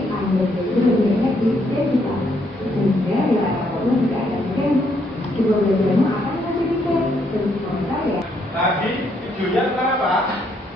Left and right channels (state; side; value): normal; both; correlation 0.72